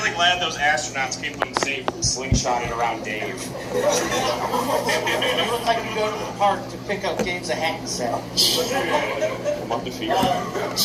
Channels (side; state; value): both; identical; correlation 1.00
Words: glad those astronauts came home safe from slingshotting around Dave. You look like you go to the park to pick up Dave's a hat set. I'm undefeated.